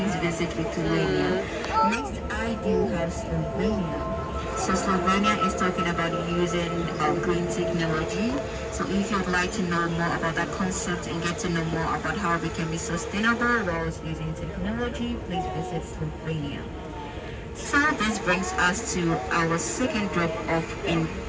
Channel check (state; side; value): identical; both; correlation 1.00